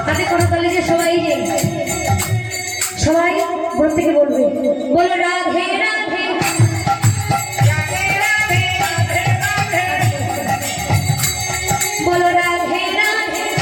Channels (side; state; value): both; identical; correlation 1.00